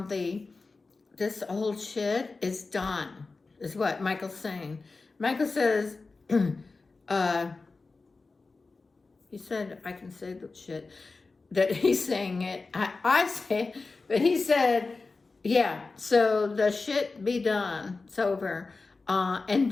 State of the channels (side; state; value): right; quieter; 3.9 dB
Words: this old shit is done, is what Michael's saying. Michael says, he said, I can say the shit, that he's saying it. I say it, but he said, yeah, so the shit be done. It's over. And